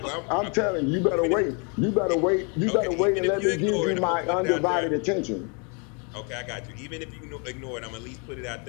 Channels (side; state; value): right; quieter; 35.2 dB